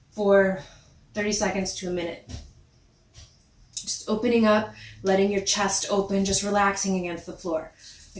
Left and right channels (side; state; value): both; identical; correlation 1.00